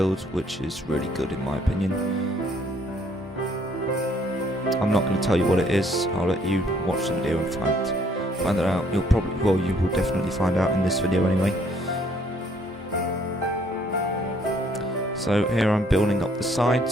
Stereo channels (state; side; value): normal; both; correlation 0.64